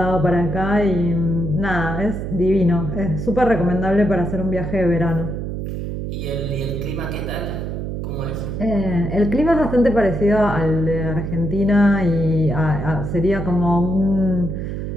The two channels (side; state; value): right; noise; hum, 4 dB below the sound